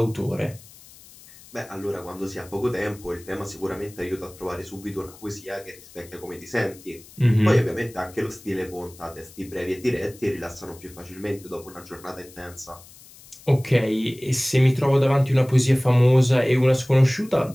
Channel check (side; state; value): left; noise; hiss, 22 dB below the sound